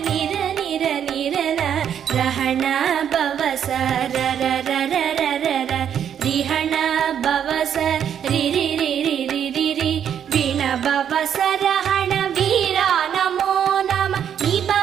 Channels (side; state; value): left; quieter; 8.9 dB